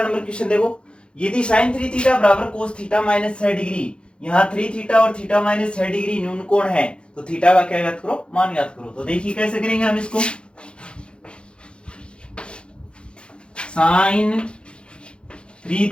नंबर क्वेश्चन देखो। यदि sin 3 थीटा बराबर cos थीटा माइनस 6 डिग्री, यहाँ 3 थीटा और थीटा माइनस 6 डिग्री न्यून कोण है, तो थीटा का क्या ज्ञात करो, मान ज्ञात करो। तो देखिए कैसे करेंगे हम इसको। sin 3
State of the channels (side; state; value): right; late; 0.056 ms